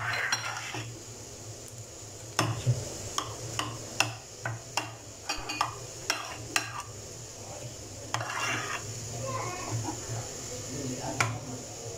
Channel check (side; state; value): both; identical; correlation 1.00